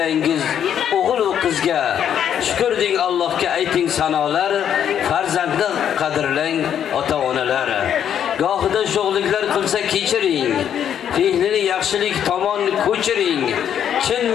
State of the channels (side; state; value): right; quieter; 9.3 dB